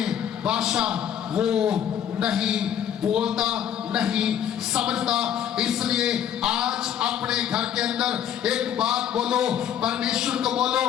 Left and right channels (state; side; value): quieter; right; 9.7 dB